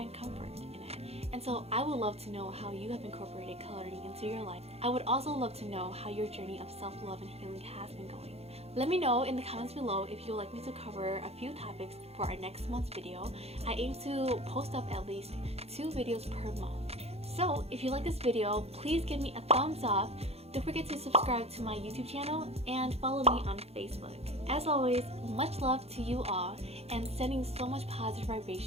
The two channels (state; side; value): late; left; 0.30 ms